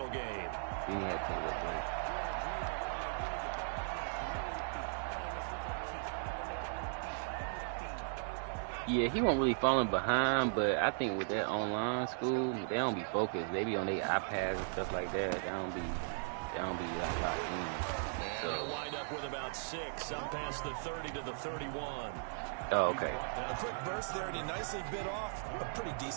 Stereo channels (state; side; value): silent; left; digital silence